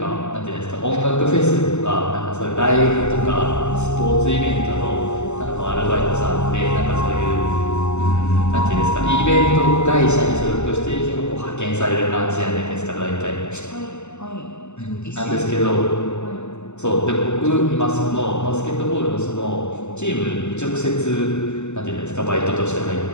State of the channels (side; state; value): right; late; 0.83 ms